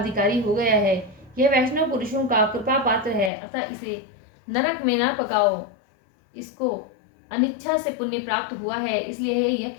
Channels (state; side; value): drops out; right; at 3.3 s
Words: हो गया है। यह वैष्णव पुरुषों का कृपा पात्र है, अतः इसे नरक में न पकाओ। इसको अनिच्छा से पुण्य प्राप्त हुआ है, इसलिए यह